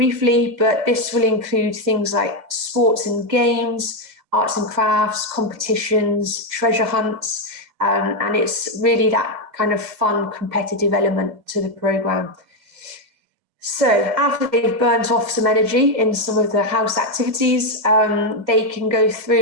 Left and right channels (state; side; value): late; left; 1.8 ms